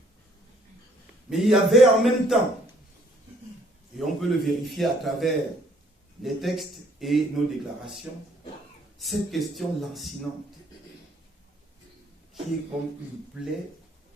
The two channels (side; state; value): both; normal; correlation 0.63